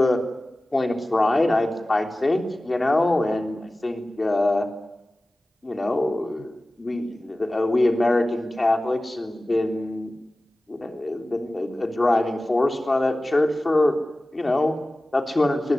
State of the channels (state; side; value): normal; both; correlation 0.97